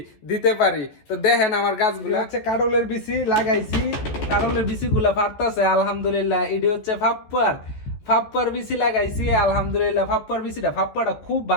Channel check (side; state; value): right; late; 14 ms